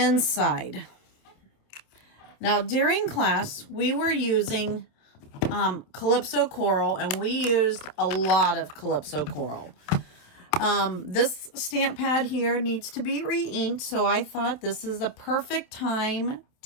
Now, during class, we were using Calypso Coral, and we used a lot of Calypso Coral. This stamp pad here needs to be re-inked, so I thought this is a perfect time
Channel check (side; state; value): right; late; 27 ms